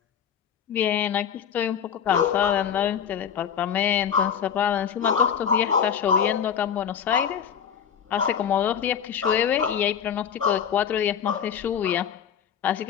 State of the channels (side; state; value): right; quieter; 8.0 dB